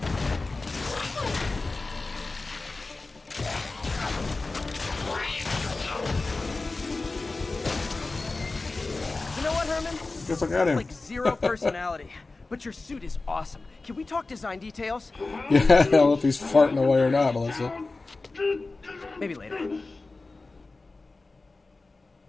You know what, Herman? Guess I got him. Like zero personality, but your suit is awesome. Can we talk design details? Yeah, I don't know if he's farting away or not, Melissa. Maybe later.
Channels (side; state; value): right; quieter; 3.5 dB